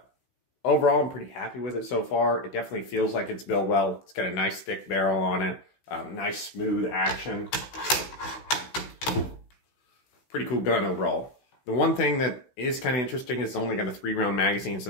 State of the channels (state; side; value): late; right; 16 ms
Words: Overall, I'm pretty happy with it so far. It definitely feels like it's built well. It's got a nice thick barrel on it, nice smooth action. Pretty cool gun overall. The one thing that is kind of interesting is it's only got a 3-round magazine, so